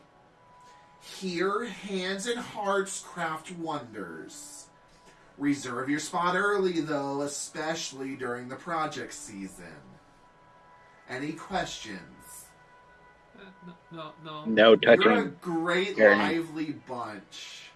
Here, hands and hearts craft wonders. Reserve your spot early, though, especially during the project season. Any questions? No. No touching. You're a great, Gurney. lively bunch.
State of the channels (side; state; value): both; identical; correlation 1.00